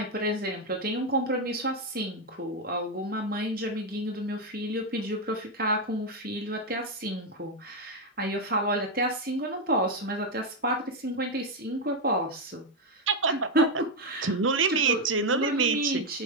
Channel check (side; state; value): both; normal; correlation 0.04